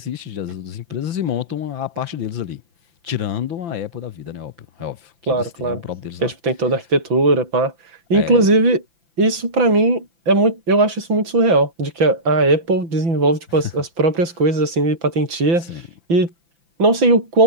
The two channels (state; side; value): late; left; 5.9 ms